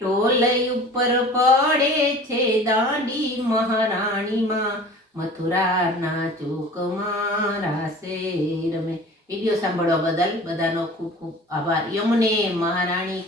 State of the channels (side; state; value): both; normal; correlation 0.42